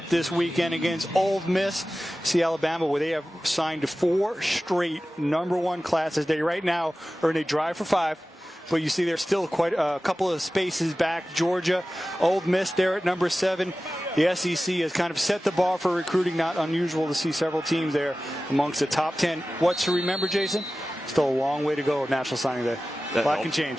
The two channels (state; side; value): normal; both; correlation 0.96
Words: this weekend against Ole Miss. See Alabama, where they have signed 4 straight number 1 classes. They right now are in a drive for 5. But you see there's still quite a couple of spaces back. Georgia, Ole Miss there at number 7. The SEC has kind of set the bar for recruiting. Not unusual to see several teams there amongst the top 10. What's to remember, Jason? Still a long way to go at National Signing Day. A lot can